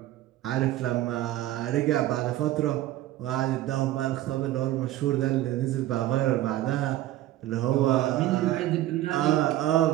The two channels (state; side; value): quieter; left; 14.6 dB